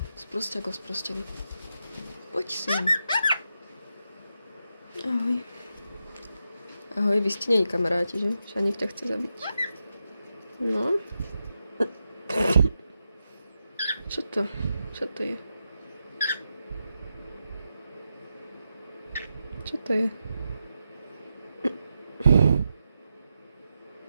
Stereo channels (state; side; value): inverted; both; correlation -0.87